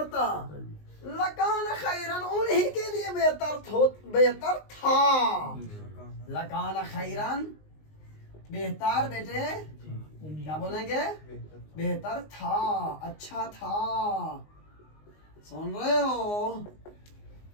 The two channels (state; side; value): late; right; 19 ms